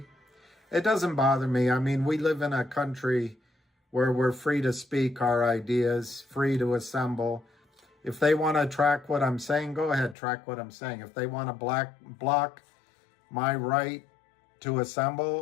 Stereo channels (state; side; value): drops out; right; at 10.2 s